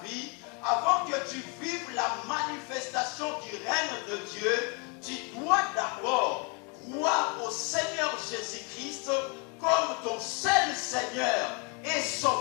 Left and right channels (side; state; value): right; quieter; 33.7 dB